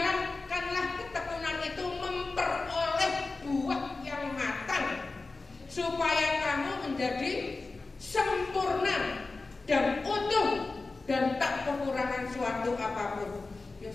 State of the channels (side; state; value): right; quieter; 3.6 dB